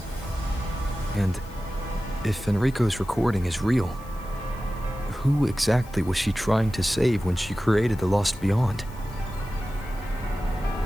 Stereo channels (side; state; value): left; noise; hiss, 24 dB below the sound